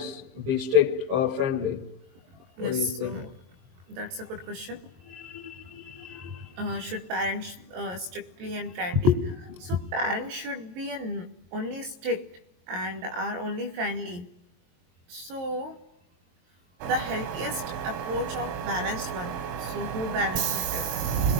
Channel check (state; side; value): late; left; 22 ms